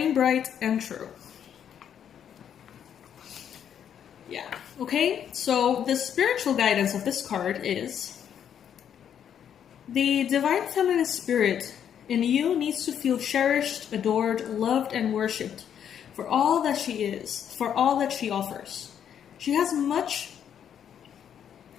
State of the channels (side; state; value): right; quieter; 8.9 dB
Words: bright and true. Yeah, okay, so the spiritual guidance of this card is the divine feminine spirit in you needs to feel cherished, adored, loved, and worshipped for all that she is, for all that she offers. She has much